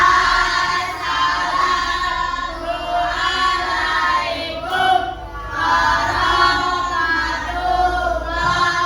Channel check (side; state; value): both; identical; correlation 1.00